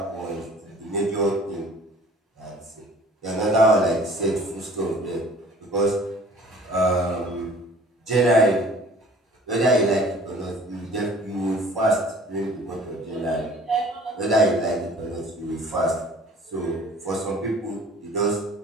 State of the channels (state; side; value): normal; both; correlation 0.50